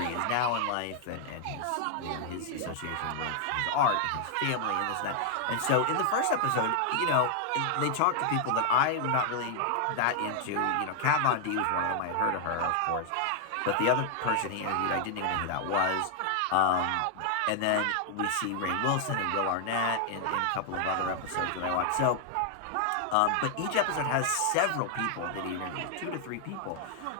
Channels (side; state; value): both; different; correlation 0.00